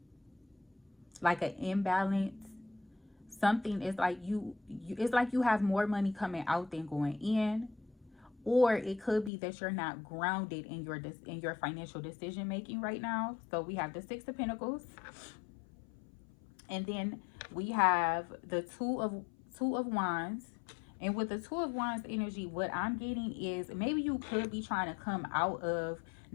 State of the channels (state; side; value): drops out; right; at 9.3 s